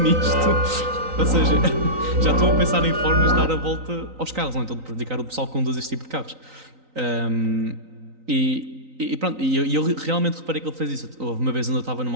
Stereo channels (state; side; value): late; left; 3.9 ms